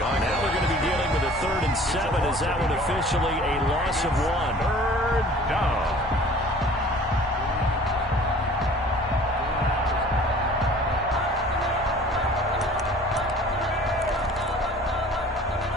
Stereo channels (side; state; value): both; normal; correlation 0.48